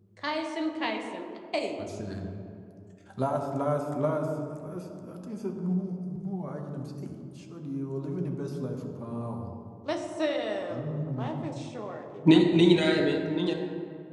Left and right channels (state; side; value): identical; both; correlation 1.00